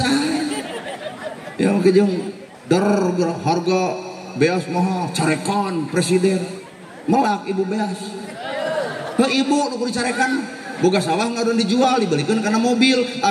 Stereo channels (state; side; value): identical; both; correlation 1.00